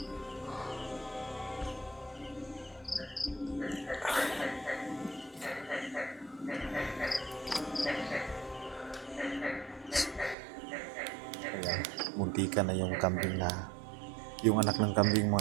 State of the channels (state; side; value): drops out; left; at 10.4 s